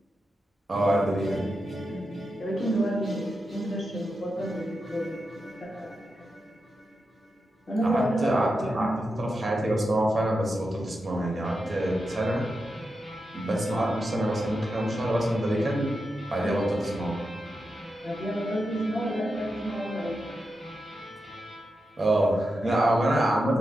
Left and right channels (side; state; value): both; normal; correlation 0.88